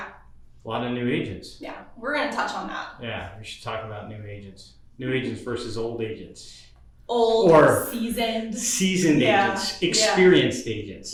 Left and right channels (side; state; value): both; identical; correlation 1.00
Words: A lot of new agents. Yeah. We're going to touch on that. Yeah. We should talk about new agents. New agents versus old agents. Old or seasoned agents, experienced agents.